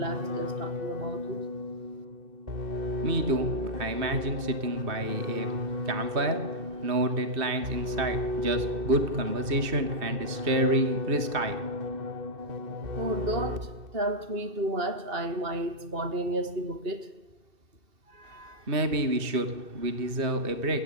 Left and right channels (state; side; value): late; left; 2.6 ms